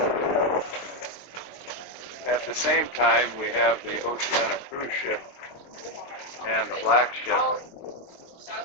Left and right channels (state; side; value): late; right; 23 ms